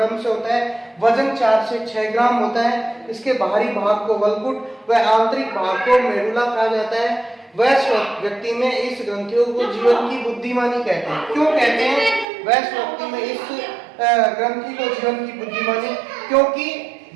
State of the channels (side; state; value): left; drops out; at 12.2 s